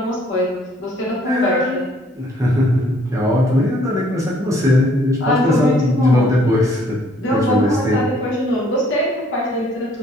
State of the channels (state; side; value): normal; both; correlation 0.62